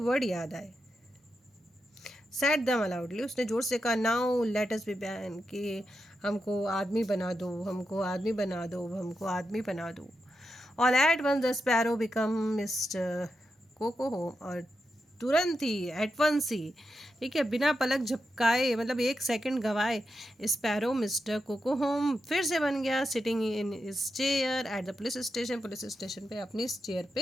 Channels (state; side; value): normal; both; correlation 0.87